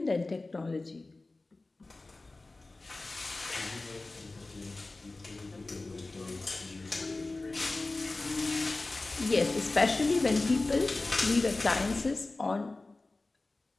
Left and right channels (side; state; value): right; quieter; 3.2 dB